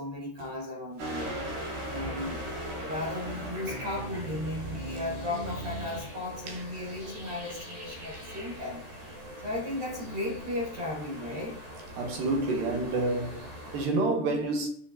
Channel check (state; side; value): late; left; 13 ms